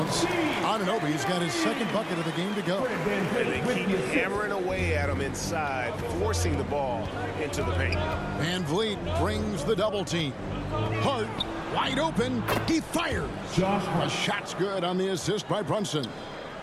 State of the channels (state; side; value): identical; both; correlation 1.00